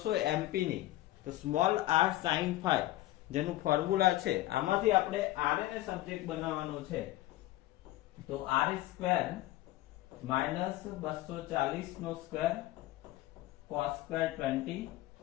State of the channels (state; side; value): quieter; right; 16.2 dB